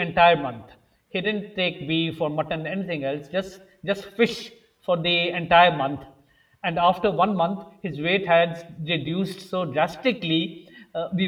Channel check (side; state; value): both; identical; correlation 1.00